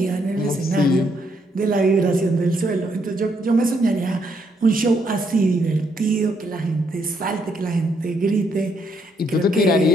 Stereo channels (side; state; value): both; normal; correlation 0.74